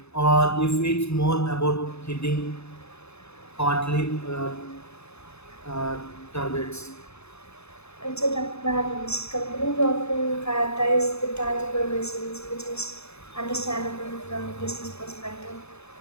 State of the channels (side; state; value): right; late; 0.80 ms